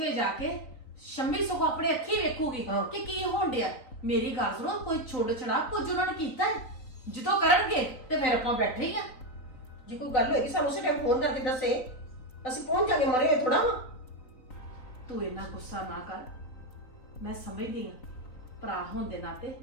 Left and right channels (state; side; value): late; right; 3.9 ms